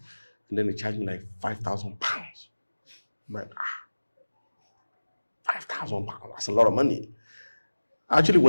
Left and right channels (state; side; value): inverted; both; correlation -1.00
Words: And then he charged me like £5,000. I'm like, £5,000, that's a lot of money. I actually